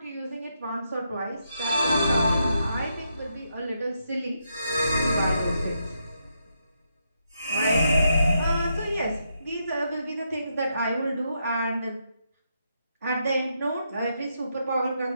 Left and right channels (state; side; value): inverted; both; correlation -0.80